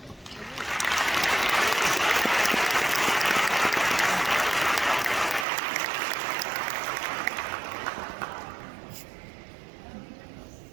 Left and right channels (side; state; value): left; drops out; at 5.5 s